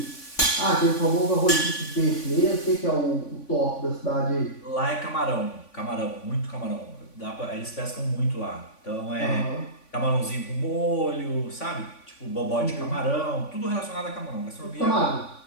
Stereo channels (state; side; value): late; right; 3.5 ms